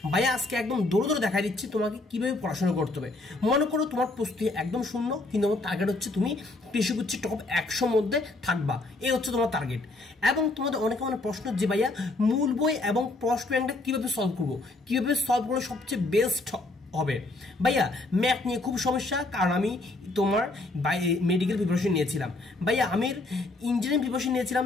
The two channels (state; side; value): quieter; right; 3.0 dB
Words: ভাইয়া আজকে একদম দৌড়ে দৌড়ে দেখা দিচ্ছি তোমাকে কিভাবে পড়াশোনা করতে হবে। মনে করো তোমার প্রস্তুতি একদম শূন্য, কিন্তু আমার টার্গেট হচ্ছে তুমি কৃষিগুচ্ছের টপ 100 মধ্যে থাকবা, এই হচ্ছে তোমার টার্গেট। এবং তোমাদের অনেকে প্রশ্ন যে ভাইয়া মূল বই এবং প্রশ্ন ব্যাংকটা কিভাবে সলভ করবো, কিভাবে সলভ করলে সবচেয়ে বেস্ট হবে। ভাইয়া ম্যাথ নিয়ে খুব সমস্যা, কারণ আমি তোমার মেডিকেল প্রিপারেশন নিয়েছিলাম। ভাইয়া আমি ইঞ্জিনিয়ারিং প্রিপারেশন নিয়েছিলাম,